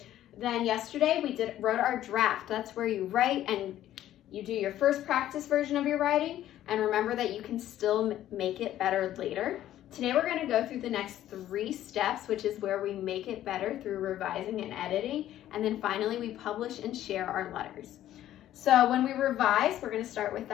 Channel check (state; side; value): quieter; right; 12.7 dB